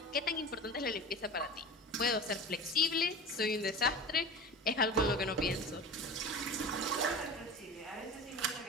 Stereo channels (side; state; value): both; normal; correlation 0.33